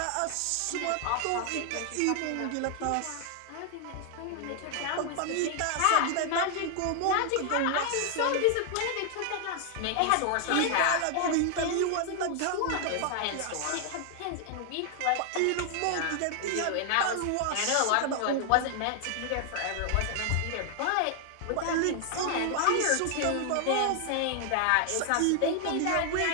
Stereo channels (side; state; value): both; different; correlation 0.00